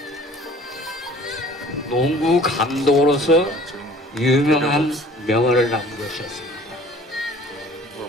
농구 감독으로서 유명한 명언을 남기셨습니다.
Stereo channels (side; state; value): both; normal; correlation 0.49